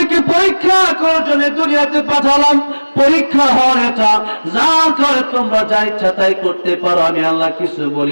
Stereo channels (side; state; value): both; inverted; correlation -1.00